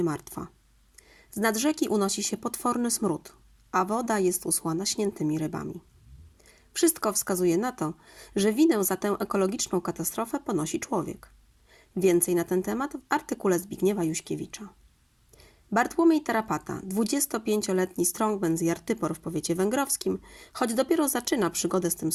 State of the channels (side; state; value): both; identical; correlation 1.00